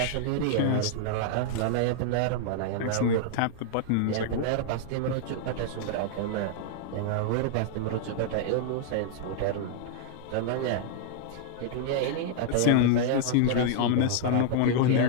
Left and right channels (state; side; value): different; both; correlation -0.01